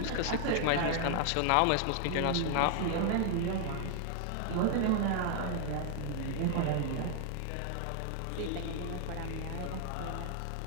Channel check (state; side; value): different; both; correlation 0.00